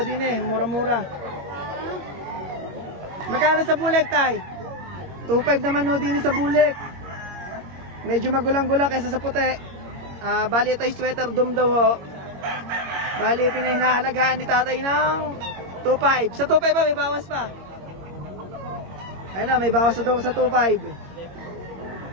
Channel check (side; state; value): left; late; 22 ms